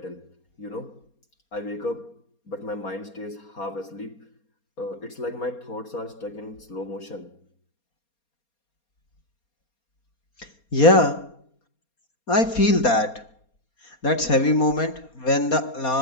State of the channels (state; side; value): late; right; 4.3 ms